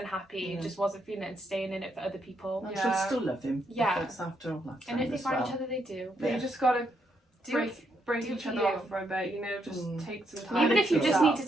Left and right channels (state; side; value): normal; both; correlation 0.77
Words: Yeah. just wasn't feeling it and staying in it for other people. and Yeah. she'll still love him. Yeah. If it's after all that time And if they as find well. each other, they do. But Yeah. you just got to Do break do each for other you. off for a bit, you know, just Mm. take some And time. Even I if you think just so. need to